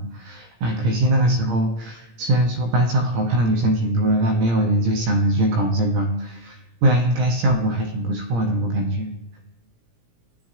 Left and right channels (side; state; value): left; late; 17 ms